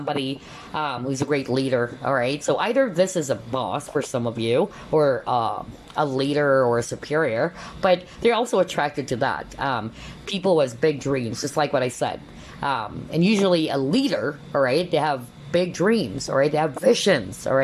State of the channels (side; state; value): both; identical; correlation 1.00